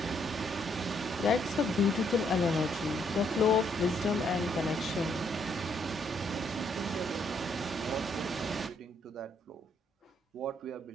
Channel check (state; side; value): normal; both; correlation 0.71